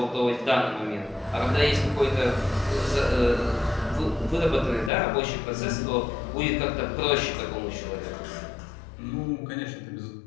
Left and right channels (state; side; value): drops out; right; at 4.9 s